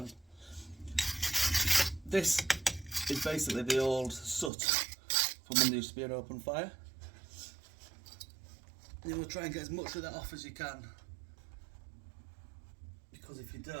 This is basically the old soot from when there used to be an open fire. You will try and get as much of that off as you can, because if you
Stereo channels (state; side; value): drops out; left; at 4.5 s